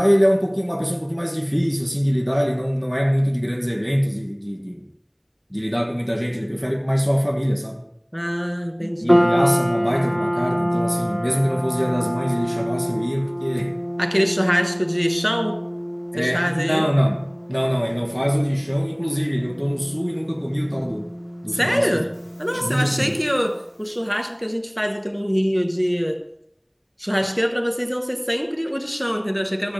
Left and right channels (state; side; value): identical; both; correlation 1.00